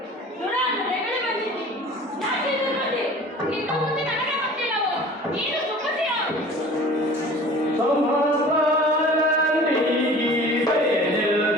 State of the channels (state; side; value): normal; both; correlation 0.44